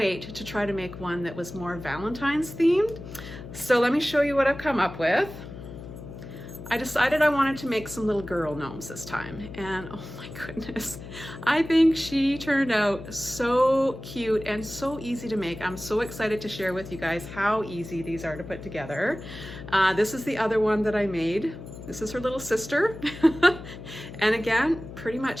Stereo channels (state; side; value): noise; left; hum, 12 dB below the sound